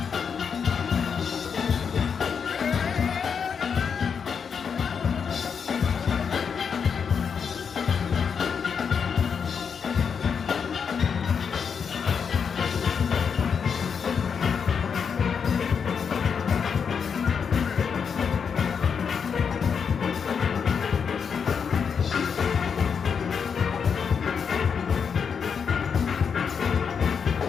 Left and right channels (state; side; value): quieter; right; 6.5 dB